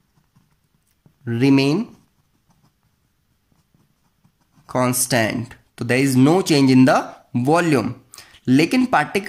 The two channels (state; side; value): identical; both; correlation 1.00